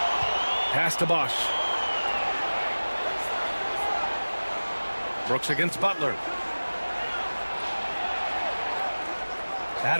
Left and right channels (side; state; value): both; inverted; correlation -1.00